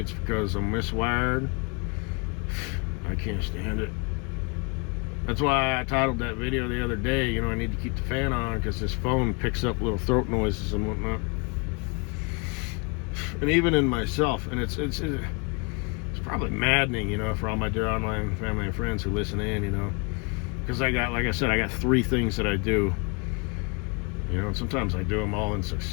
it's because I'm miswired, I can't stand it. That's why I titled that video the other day, I need to keep the fan on because this phone picks up little throat noises and whatnot. And even in myself, and it's probably maddening, for all my dear online family and friends who listen in, because like I said, I got 3 things that I do, and sometimes I do them all in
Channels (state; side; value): quieter; right; 31.9 dB